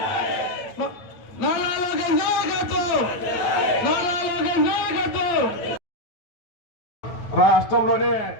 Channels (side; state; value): right; late; 9.1 ms